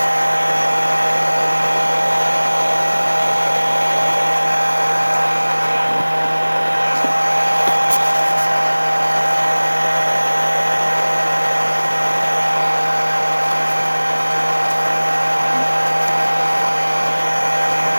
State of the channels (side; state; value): both; inverted; correlation -1.00